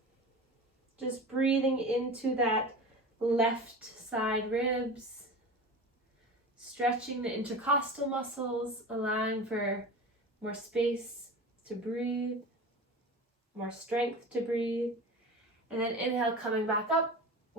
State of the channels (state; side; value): normal; both; correlation 0.32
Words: Just breathing into that left side ribs. Stretching the intercostal muscles, allowing for more space to breathe, more strength to breathe. And then inhale, coming back up,